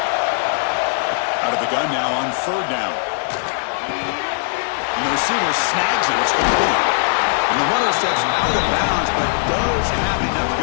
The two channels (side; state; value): right; silent; digital silence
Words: Out of the gun now on third down. And the receiver snags it. It's complete. And the runner steps out of bounds, but does have enough